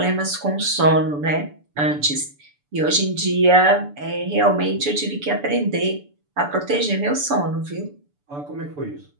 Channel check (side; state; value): left; late; 6.9 ms